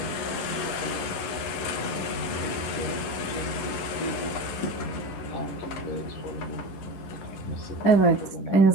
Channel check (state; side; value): late; right; 11 ms